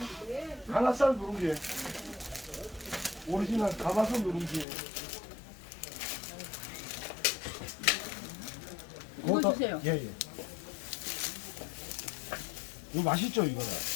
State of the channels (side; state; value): right; drops out; at 4.7 s